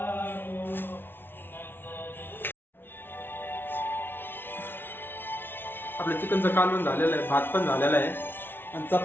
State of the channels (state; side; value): late; right; 0.10 ms